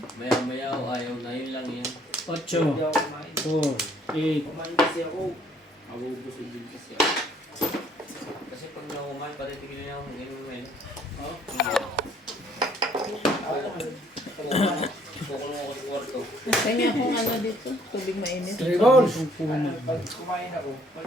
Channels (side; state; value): both; normal; correlation 0.62